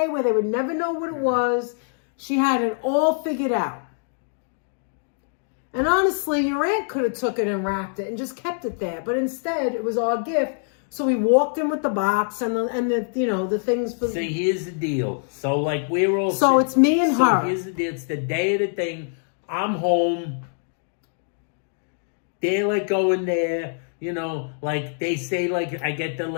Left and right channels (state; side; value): silent; right; 62 dB below the other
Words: where they would never know what it was. She had it all figured out. And honestly, your aunt could have took it and wrapped it and just kept it there. But instead, it was our gift. So we walked in with the box and the things for. See, here's the deal. So like we're all. So it's me and so her. Here's the deal. It's the day of the thing. I'm home. They're like going there. Like they say, like I get the